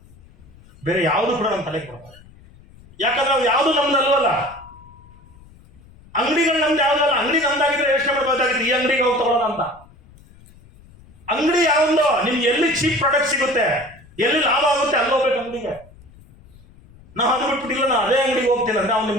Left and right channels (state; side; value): noise; left; rumble, 24 dB below the sound